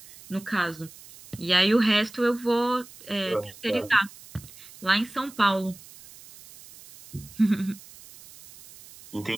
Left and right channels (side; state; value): right; noise; hiss, 20 dB below the sound